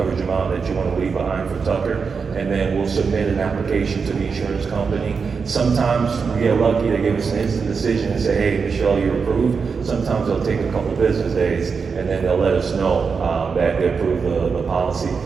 amount that you want to leave behind for Tucker, and then we'll submit an application to the insurance company. Sometimes we get lucky, they give us an instant decision and say, hey, Michelle, you're approved. Sometimes they'll take a couple business days, and then they'll let us know that they approve the policy,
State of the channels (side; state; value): left; quieter; 5.4 dB